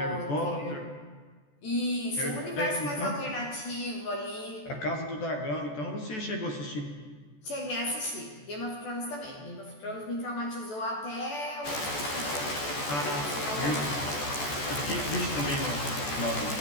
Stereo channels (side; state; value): right; late; 14 ms